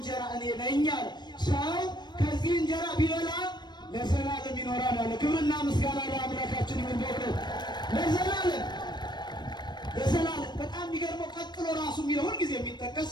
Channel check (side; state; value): right; late; 0.21 ms